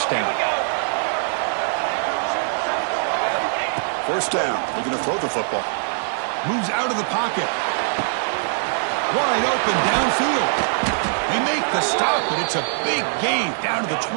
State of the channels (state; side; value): silent; left; digital silence